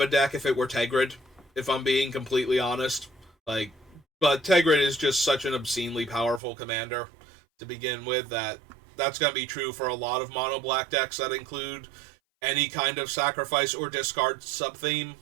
deck if it were Tegrid, if I'm being completely honest. But Tegrid is just such an obscenely powerful commander to begin with that's going to be true for a lot of mono-black decks that include any kind of sacrifice or discard sub-theme,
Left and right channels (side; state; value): left; drops out; at 6.4 s